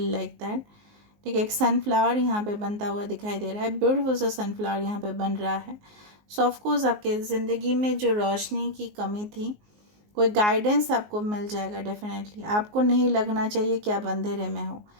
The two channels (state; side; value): late; left; 19 ms